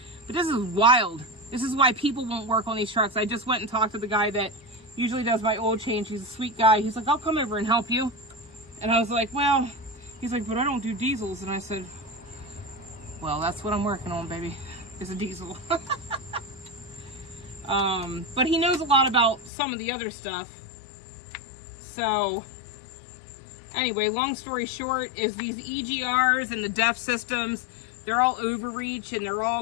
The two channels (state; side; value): drops out; right; at 19.5 s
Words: But this is wild. This is why people won't work on these trucks. I just went and talked to the guy that usually does my oil change. He's a sweet guy. He's like, I'll come over and help you. And I was like, well, he's like, but I don't do diesels. And I said, well, that's what I'm working on, baby, is a diesel. But he knows a lot about some of the other stuff. So anyway, long story short is these EGRs and the DEF systems, they're all overreach and they're